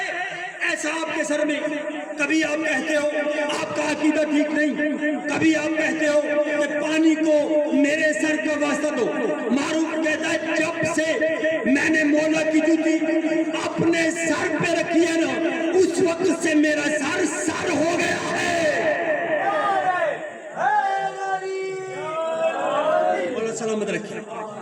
ایسا آپ کے سر میں؟ کبھی آپ کہتے ہو آپ کا عقیدہ ٹھیک نہیں، کبھی آپ کہتے ہو کہ پانی کو میرے سر کا واسطہ دو. معروف کہتا ہے جب سے میں نے مولا کی جوتی اپنے سر پہ رکھی ہے نا، اس وقت سے میرا سر سر ہو گیا ہے. مولا سلامت رکھے.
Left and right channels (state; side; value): identical; both; correlation 1.00